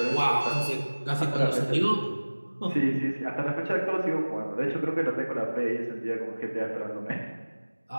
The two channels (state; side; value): inverted; both; correlation -1.00